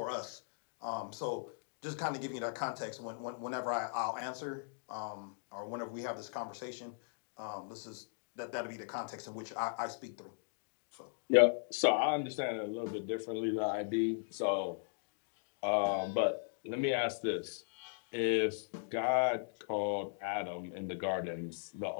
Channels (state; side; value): silent; right; digital silence